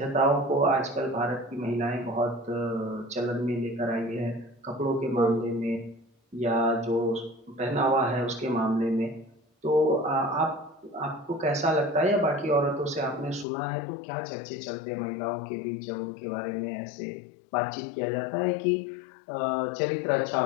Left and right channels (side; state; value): right; drops out; at 13.5 s